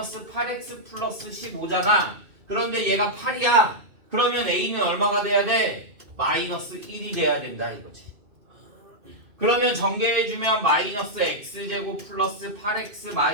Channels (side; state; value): left; late; 2.5 ms